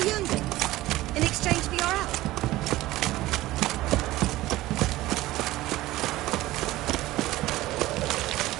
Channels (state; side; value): quieter; left; 17.1 dB